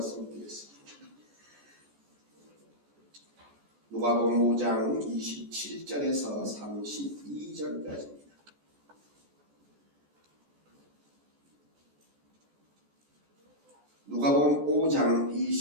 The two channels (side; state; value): left; late; 14 ms